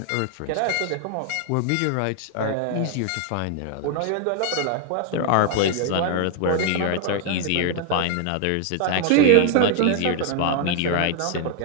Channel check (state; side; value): different; both; correlation 0.00